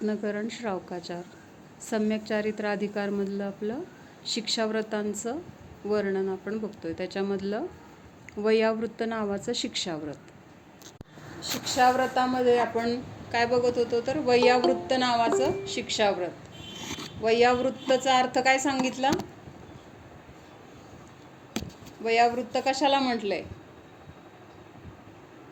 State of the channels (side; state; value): both; identical; correlation 1.00